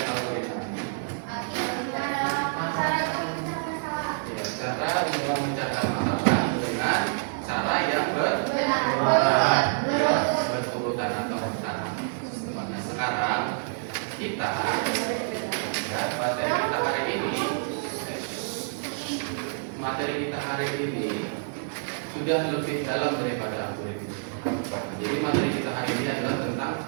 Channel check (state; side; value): silent; left; 60 dB below the other